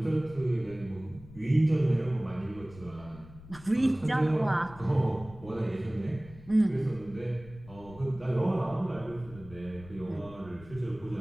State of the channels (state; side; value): noise; left; rumble, 18 dB below the sound